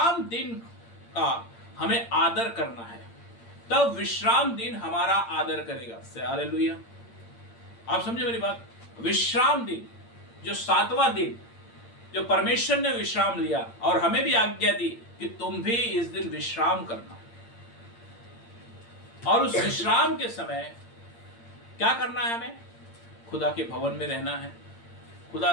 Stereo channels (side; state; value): right; late; 8.7 ms